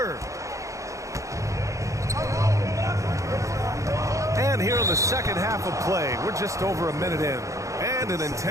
And here in the second half of play, we're just over a minute in. And an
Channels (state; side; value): late; left; 0.15 ms